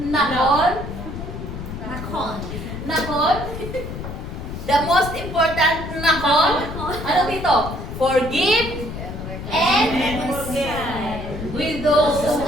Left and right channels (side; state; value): left; noise; rumble, 8 dB below the sound